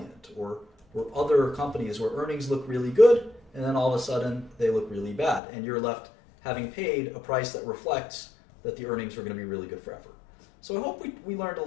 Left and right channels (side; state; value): right; drops out; at 5.4 s